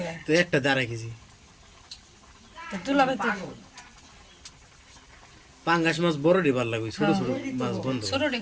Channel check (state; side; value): identical; both; correlation 1.00